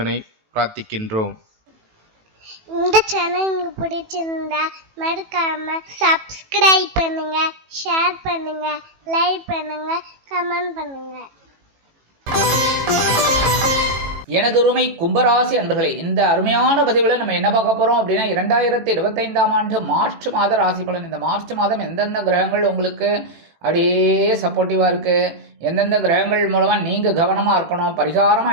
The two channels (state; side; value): late; left; 18 ms